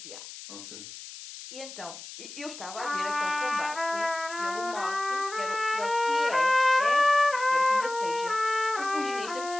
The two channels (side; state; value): left; noise; hiss, 13 dB below the sound